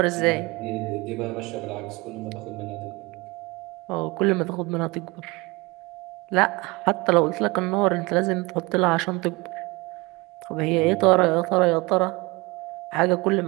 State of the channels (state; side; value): quieter; left; 24.3 dB